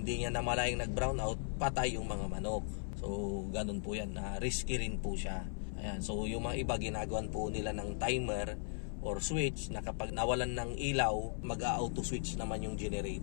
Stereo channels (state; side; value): silent; right; 53 dB below the other